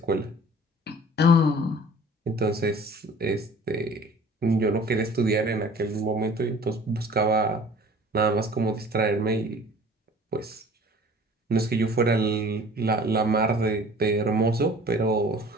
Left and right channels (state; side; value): normal; both; correlation 0.47